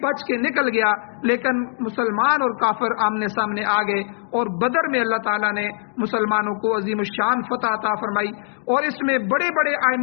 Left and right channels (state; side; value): silent; right; digital silence